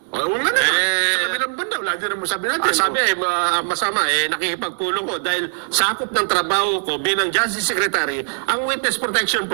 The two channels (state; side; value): silent; left; digital silence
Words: Oo nga naman. Sa kabilang banda, wala din naman sabi natin. Sabi masama, nakikipagpulong ko dahil sakop ng trabaho ko bilang Justice Secretary ang Witness Protection